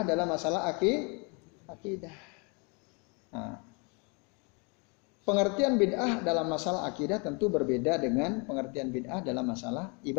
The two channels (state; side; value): quieter; right; 32.9 dB